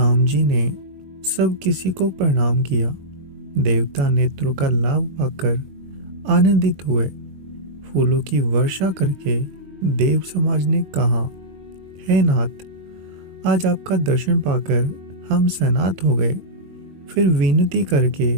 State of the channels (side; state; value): left; late; 22 ms